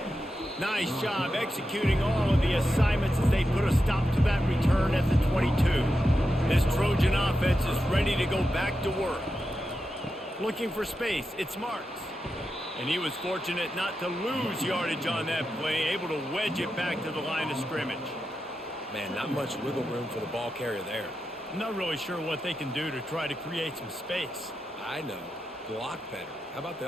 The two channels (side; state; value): both; normal; correlation 0.89